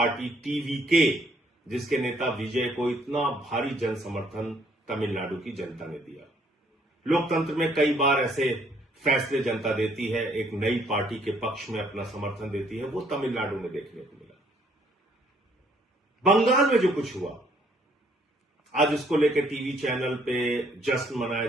टीवीके, जिसके नेता विजय को इतना भारी जन समर्थन तमिलनाडु की जनता ने दिया। लोकतंत्र में कई बार ऐसे फैसले जनता देती है, एक नई पार्टी के पक्ष में अपना समर्थन देती है। वो तमिलनाडु में देखने को मिला। बंगाल में जो कुछ हुआ, आज उसको लेकर टीवी चैनल पे जश्न मनाया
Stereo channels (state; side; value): normal; both; correlation 0.65